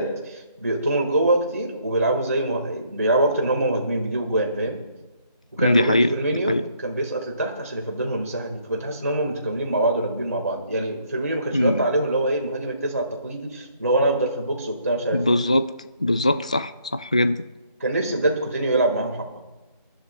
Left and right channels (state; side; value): inverted; both; correlation -0.67